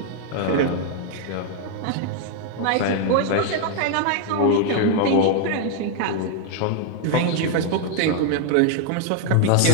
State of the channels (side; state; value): both; different; correlation 0.00